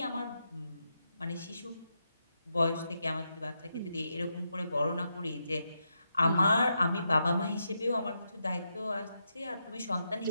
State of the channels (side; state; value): both; inverted; correlation -0.84